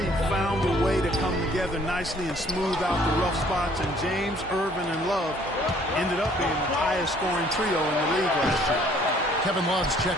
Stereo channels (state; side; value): normal; both; correlation 0.59